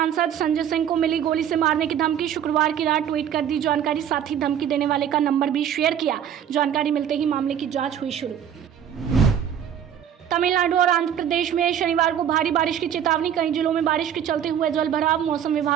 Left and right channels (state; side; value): quieter; left; 9.3 dB